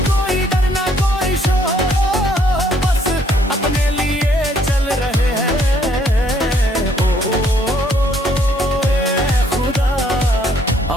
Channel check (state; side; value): normal; both; correlation 0.66